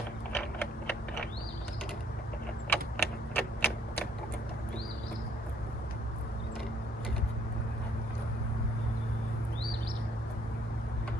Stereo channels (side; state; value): both; normal; correlation 0.65